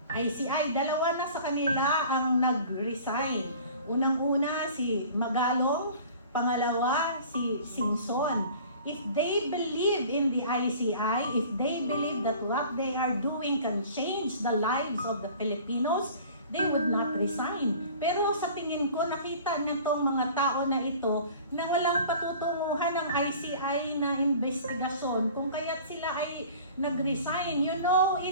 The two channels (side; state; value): both; inverted; correlation -0.45